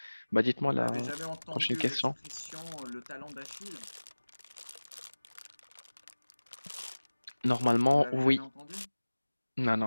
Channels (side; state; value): both; inverted; correlation -1.00